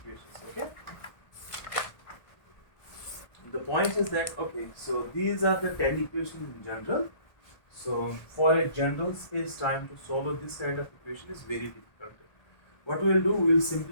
Okay. The point is that so these are the 10 equations in general. So for a general space-time to solve this kind of equation is very difficult. What we will do, we will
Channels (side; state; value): right; late; 1.3 ms